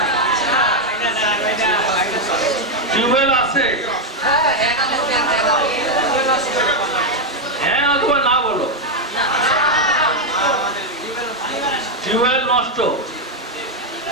টিউবওয়েল আছে? হ্যাঁ অথবা না বলো। টিউবওয়েল নষ্ট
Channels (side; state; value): both; normal; correlation 0.02